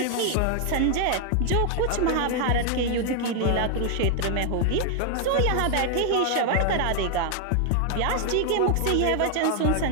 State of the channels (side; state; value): both; different; correlation 0.00